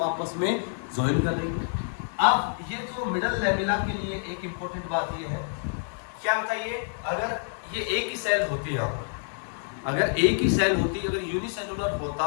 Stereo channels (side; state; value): right; silent; 60 dB below the other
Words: आपस में ज्वाइन कर रही है। अब ये जो मिडल लेमिला के लिए एक इंपॉर्टेंट बात ये है, क्या बताइए, अगर ये एक ही सेल होती है, यहाँ पर अगर एक ही सेल होती, अगर यूनिसेलुलर होता,